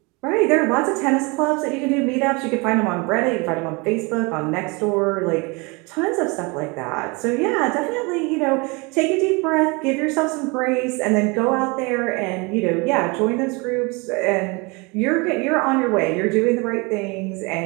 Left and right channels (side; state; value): left; quieter; 28.0 dB